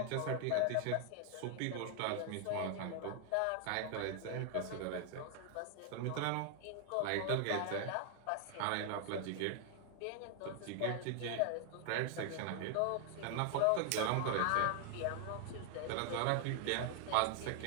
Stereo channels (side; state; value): both; different; correlation 0.00